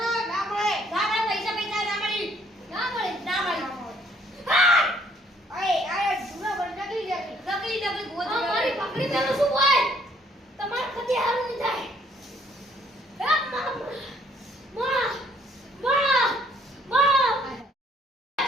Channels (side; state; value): both; normal; correlation 0.64